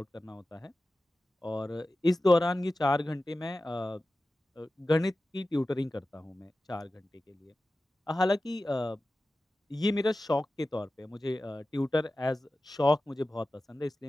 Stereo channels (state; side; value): normal; both; correlation 0.94